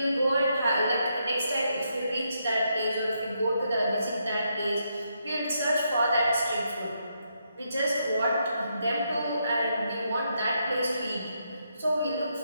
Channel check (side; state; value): both; inverted; correlation -0.79